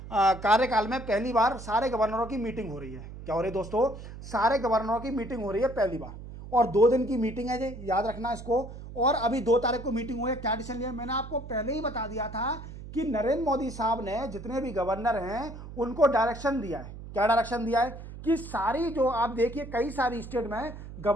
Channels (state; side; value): noise; right; hum, 12 dB below the sound